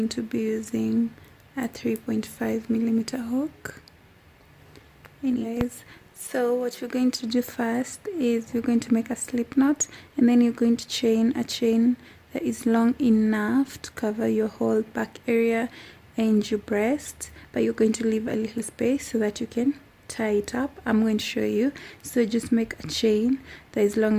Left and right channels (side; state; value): both; identical; correlation 1.00